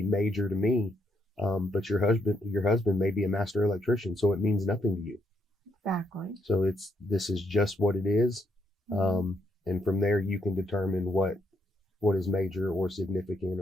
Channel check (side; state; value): both; normal; correlation 0.76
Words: major to me, but your husband may be a master electrician, so it means nothing to you. Exactly. So this is just what it is. And from there you can determine what is major or significant